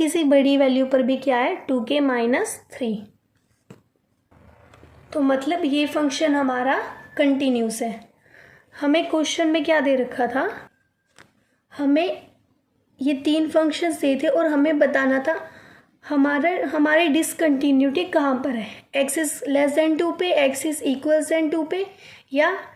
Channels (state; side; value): identical; both; correlation 1.00